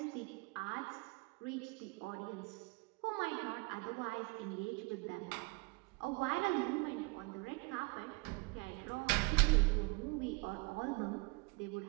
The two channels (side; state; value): left; quieter; 28.6 dB